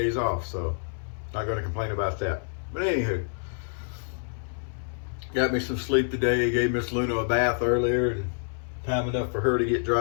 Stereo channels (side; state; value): right; silent; 58 dB below the other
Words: off, so not going to complain about that. But anywho, got me some sleep today. Gave Miss Luna a bath earlier, and time enough for her to get